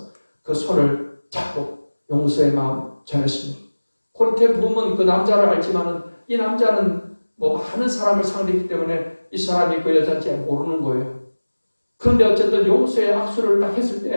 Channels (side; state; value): both; inverted; correlation -1.00